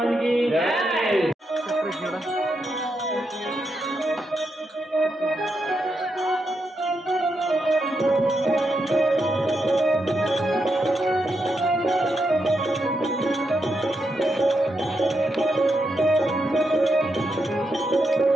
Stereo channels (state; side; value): normal; both; correlation 0.83